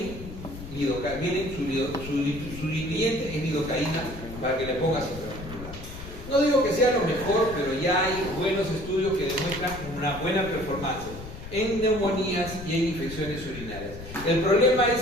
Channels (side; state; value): left; noise; rumble, 12 dB below the sound